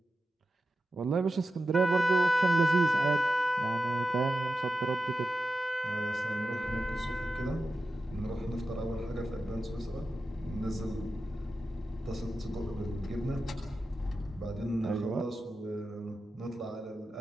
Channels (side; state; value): both; normal; correlation 0.91